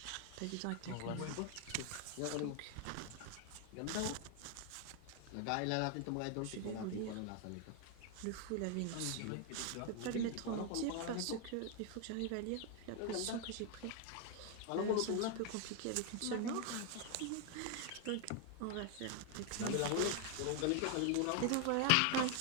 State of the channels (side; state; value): both; different; correlation 0.00